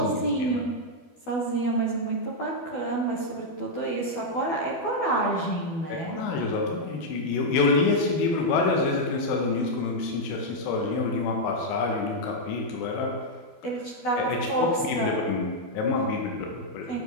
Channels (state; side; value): late; right; 12 ms